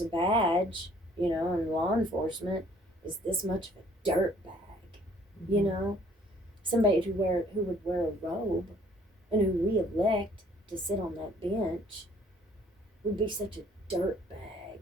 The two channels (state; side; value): normal; both; correlation 0.59